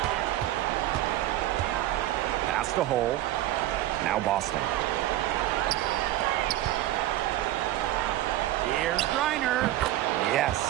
Pass to Hull. Now Boston. Here's Griner. Yes,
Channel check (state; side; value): quieter; left; 14.7 dB